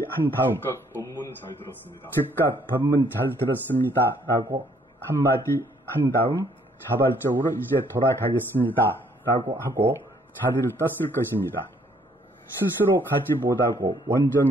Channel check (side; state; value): both; normal; correlation 0.65